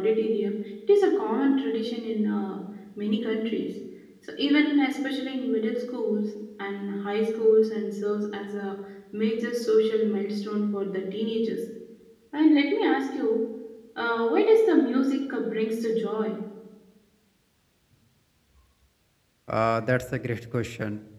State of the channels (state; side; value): identical; both; correlation 1.00